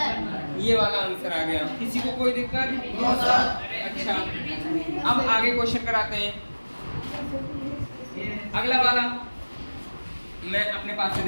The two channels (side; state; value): both; inverted; correlation -1.00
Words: ये वाला आंसर आ गया। किसी को कोई दिक्कत? अच्छा, अब आगे क्वेश्चन कराते हैं। अगला वाला मैं अपने पास से